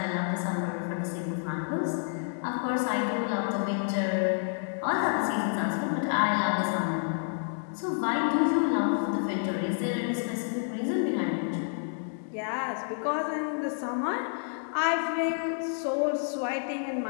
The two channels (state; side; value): silent; right; digital silence